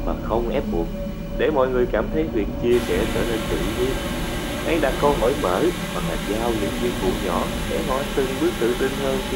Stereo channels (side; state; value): both; identical; correlation 1.00